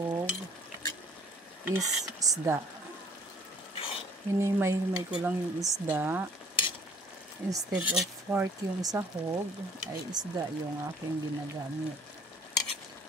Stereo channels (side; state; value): both; normal; correlation 0.57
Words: is isda. Hinimay-himay ko lang yung isda. Instead of pork yung sahog, ay isda yung aking ginagamit.